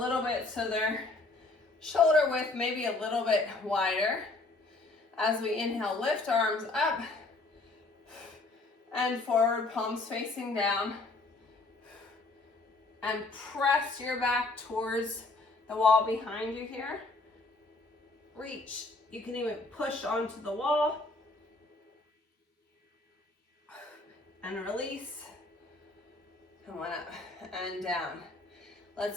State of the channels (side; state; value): right; quieter; 3.3 dB